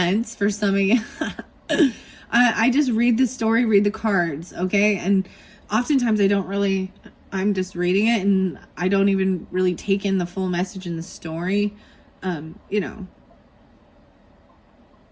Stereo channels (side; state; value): both; identical; correlation 1.00